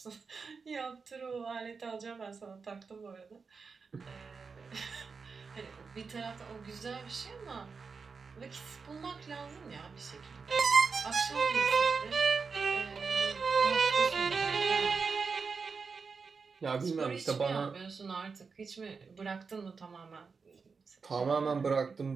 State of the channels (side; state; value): left; quieter; 5.0 dB